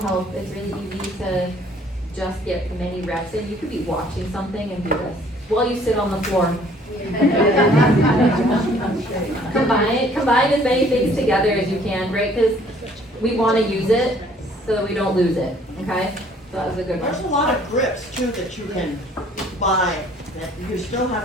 It's really easy to just get many reps in. You could be watching something and do this while you sit on the floor. Combine as many things together as you can, right? Because we want to use it so that we don't lose it, okay? So that was a good one. There's a lot of grips too that you can buy, that you still have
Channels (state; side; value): normal; both; correlation 0.58